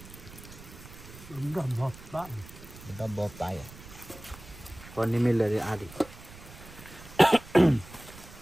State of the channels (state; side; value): noise; right; rumble, 17 dB below the sound